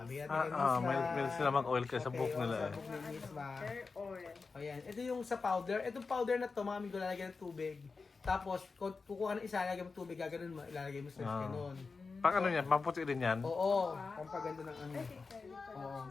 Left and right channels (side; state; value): right; quieter; 4.5 dB